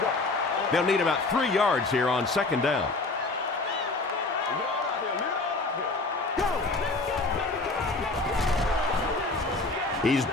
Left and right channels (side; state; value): right; quieter; 3.4 dB